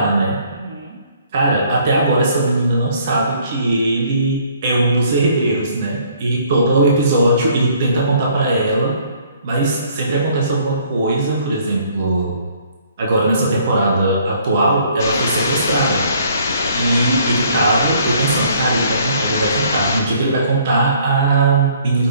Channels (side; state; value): both; inverted; correlation -0.60